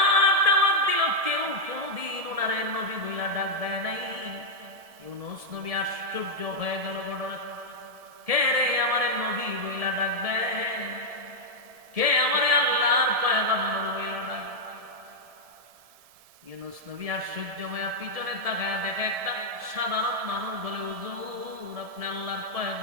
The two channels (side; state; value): left; late; 1.7 ms